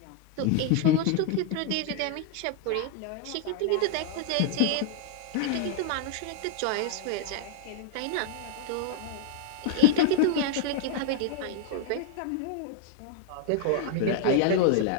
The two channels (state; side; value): different; both; correlation 0.00